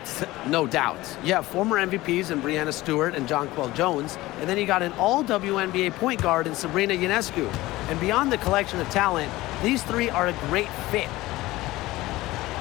no doubt. You have former MVPs in Breanna Stewart and Jonquel Jones, and then you got an all-WNBA point guard in Sabrina Ionescu. And beyond the collection of talent, these three are a great fit.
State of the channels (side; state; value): right; quieter; 18.4 dB